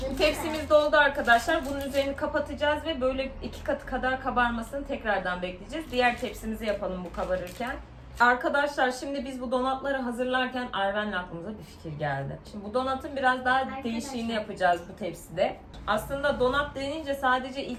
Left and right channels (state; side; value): identical; both; correlation 1.00